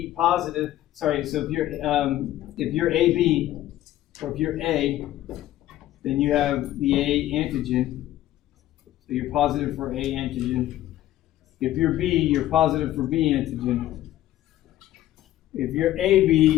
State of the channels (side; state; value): right; quieter; 14.0 dB